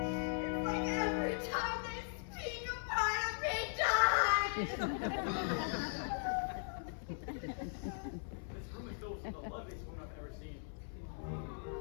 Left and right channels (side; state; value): right; silent; 52 dB below the other